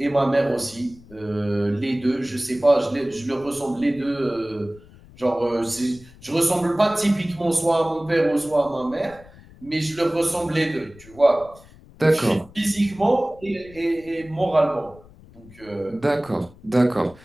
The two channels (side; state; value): left; noise; rumble, 23 dB below the sound